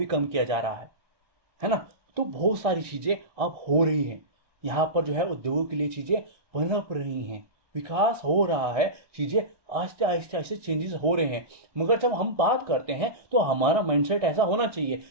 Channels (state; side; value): late; left; 1.6 ms